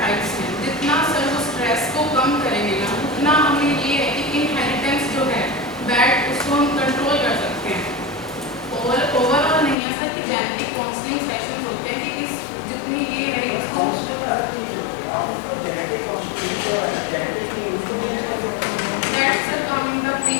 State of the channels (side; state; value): right; drops out; at 9.8 s